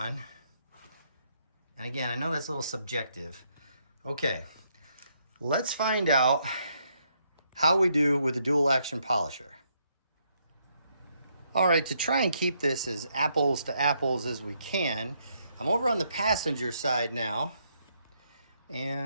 And again, I know that's a little subjective. Okay, let's find out how we do with the dual action polisher. All right, to try and keep this as apples to apples as we can, I'm over on the passenger side now.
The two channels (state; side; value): inverted; both; correlation -0.74